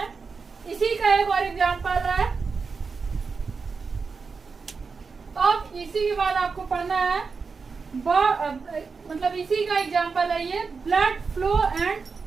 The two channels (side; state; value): left; quieter; 4.9 dB